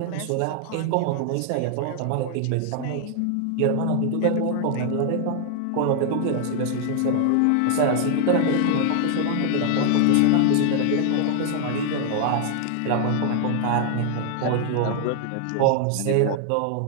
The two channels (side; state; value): both; different; correlation 0.00